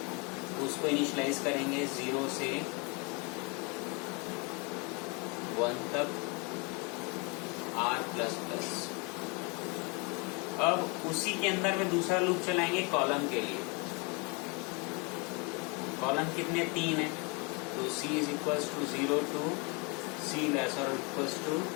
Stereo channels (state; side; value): quieter; right; 31.1 dB